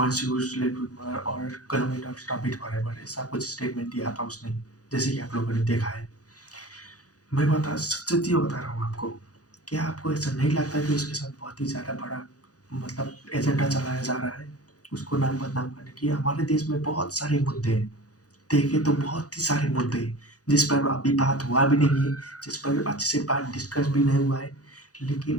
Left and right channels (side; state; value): right; late; 0.67 ms